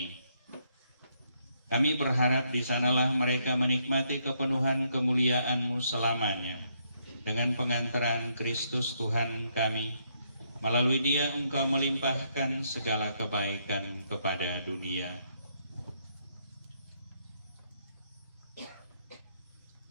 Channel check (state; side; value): inverted; both; correlation -0.74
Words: Kami berharap di sanalah mereka menikmati kepenuhan kemuliaan-Mu selamanya, dengan pengantaran Kristus Tuhan kami, Melalui Dia Engkau melimpahkan segala kebaikan kepada dunia.